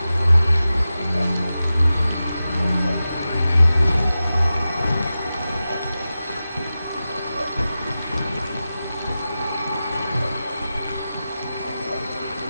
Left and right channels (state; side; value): inverted; both; correlation -0.94